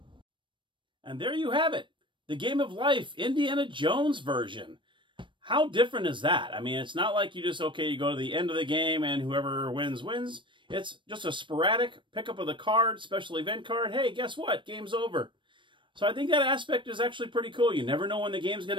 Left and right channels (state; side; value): late; left; 0.24 ms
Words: And there you have it. The Game of Life Indiana Jones version. How different is that? I mean, it's not like you just, okay, you go to the end of the game and whoever wins, wins. It's just a sporadic pickup of the card, special event card. Hey, guess what? Game's over. So I think that aspect is actually pretty cool. You never know when the game's going